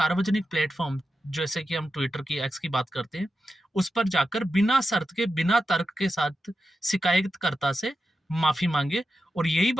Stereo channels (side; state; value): both; normal; correlation 0.90